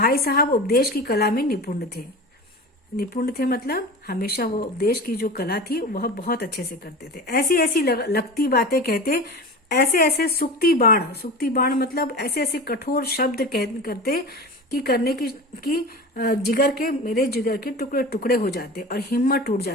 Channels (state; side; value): normal; both; correlation 0.31